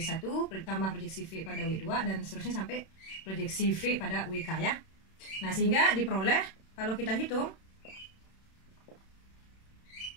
ditambah proyeksi V pada W2 dan seterusnya sampai proyeksi V pada WK ya. Nah, sehingga diperoleh kalau kita hitung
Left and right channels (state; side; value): late; right; 31 ms